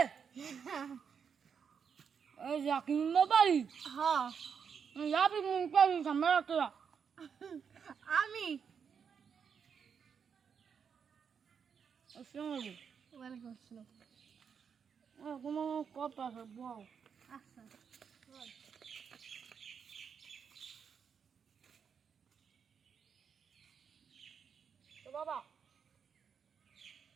এই জাকিন বাড়ি হ্যাঁ যাবি মন পাবি সামনে রাখতে আমি আসসালামু আলাইকুম ওয়ালাইকুম আসসালাম কোনো কথা আছে বল আচ্ছা তো বাবা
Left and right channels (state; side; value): quieter; left; 6.8 dB